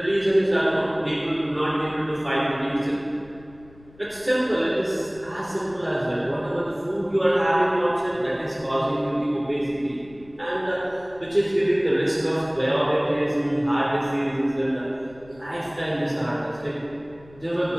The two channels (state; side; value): noise; left; rumble, 24 dB below the sound